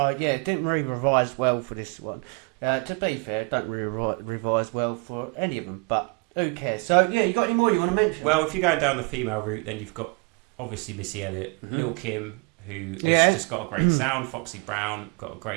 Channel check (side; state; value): left; quieter; 32.6 dB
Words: yeah, it didn't really revise well for this one. To be fair, don't really revise well for any of them, but who cares? So yeah, you got any more you want to mention? Well, if you're going down the female route, then you've got obviously Missy Elliott, Lil Kim, who has just got a great sound. Foxy Brown got a